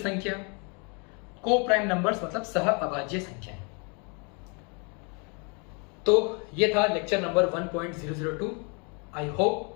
को प्राइम नंबर्स मतलब सह अभाज्य संख्याएं। तो ये था lecture number 1.002। I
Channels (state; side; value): quieter; right; 34.2 dB